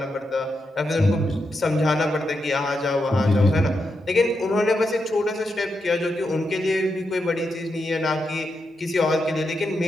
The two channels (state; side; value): normal; both; correlation 0.85